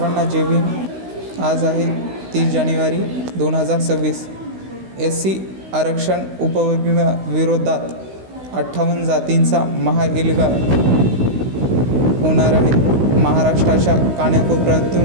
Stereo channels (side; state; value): left; late; 16 ms